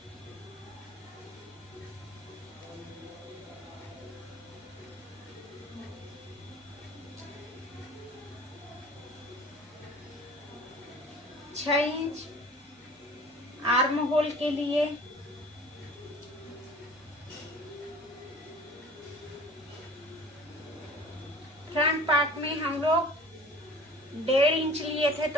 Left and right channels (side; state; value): both; normal; correlation 0.45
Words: छह इंच आर्म होल के लिए, फ्रंट पार्ट में हम लोग 1.5 इंच लिए थे,